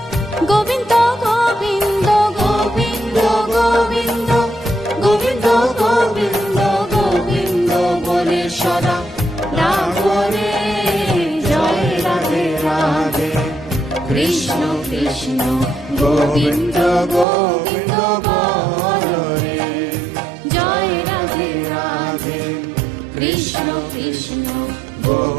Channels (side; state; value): left; drops out; at 17.2 s